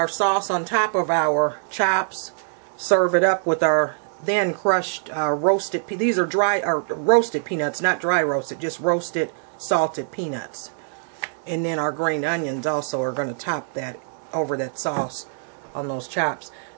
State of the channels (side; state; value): left; silent; digital silence